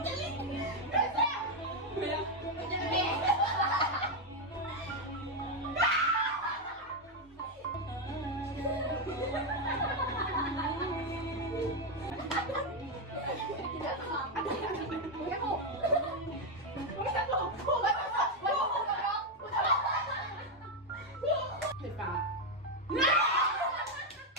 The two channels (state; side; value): normal; both; correlation 0.04